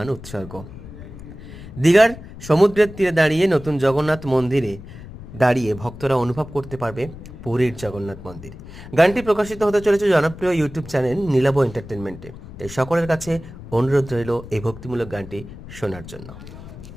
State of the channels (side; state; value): left; noise; rumble, 15 dB below the sound